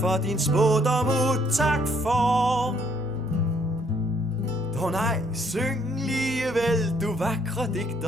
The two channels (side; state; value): both; normal; correlation 0.67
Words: din spådom tak for. Dog nej, syng ligevel, du vakre